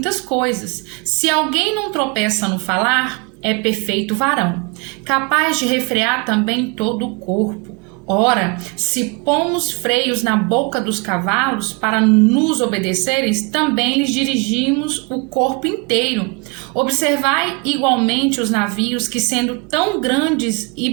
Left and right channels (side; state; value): left; quieter; 30.6 dB